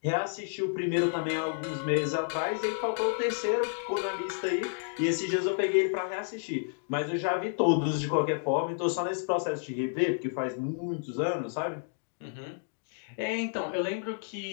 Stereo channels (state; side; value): silent; right; digital silence